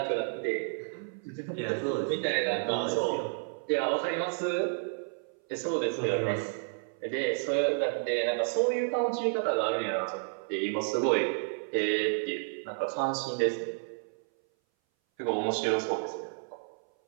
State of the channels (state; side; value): silent; left; 57 dB below the other